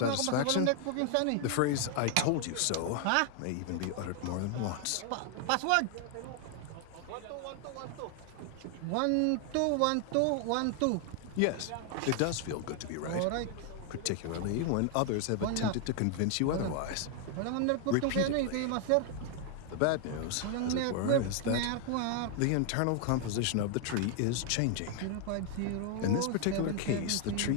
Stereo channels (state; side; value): different; both; correlation 0.00